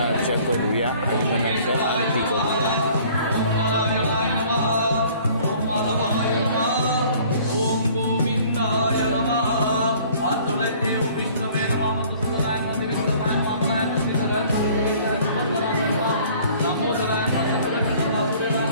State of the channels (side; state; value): both; inverted; correlation -0.53